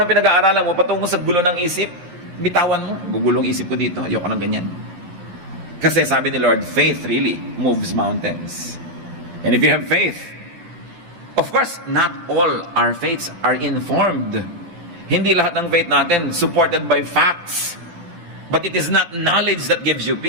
pinag-aaralan mo, patungo sa gulo ng isip, bitawan mo, gugulong isip ko dito, ayoko ng ganyan. Kasi sabi ni Lord, faith really moves mountains. And if you have faith, of course, not all our faiths are informed. Hindi lahat ng faith natin supported by facts. But it is not knowledge that gives you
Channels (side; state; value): left; late; 12 ms